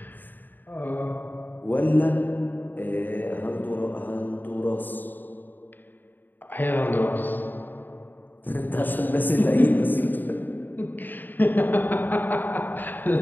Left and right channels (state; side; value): late; right; 0.090 ms